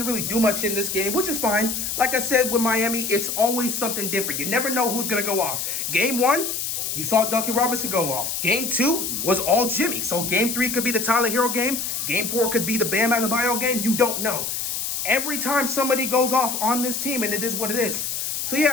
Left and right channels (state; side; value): noise; left; hiss, 3 dB below the sound